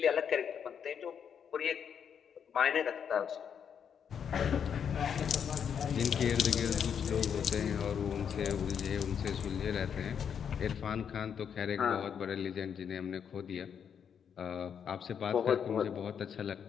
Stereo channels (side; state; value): right; quieter; 7.7 dB